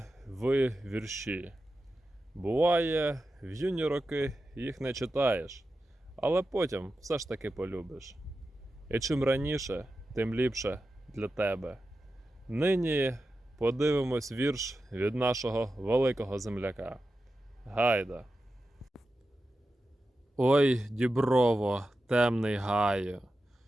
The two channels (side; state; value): both; normal; correlation 0.91